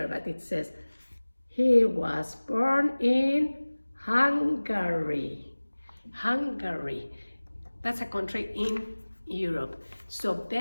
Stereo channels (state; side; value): inverted; both; correlation -1.00